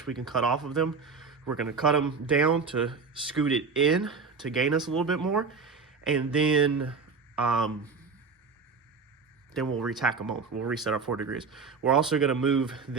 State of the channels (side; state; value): left; quieter; 4.9 dB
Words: we can cut off of them. We're going to cut them down to scoot it in to gain us a little bit more, and then we'll retack them on. We'll reset our 4 degrees. We're also going to move